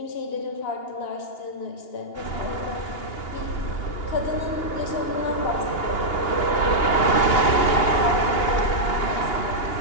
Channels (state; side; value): late; right; 2.8 ms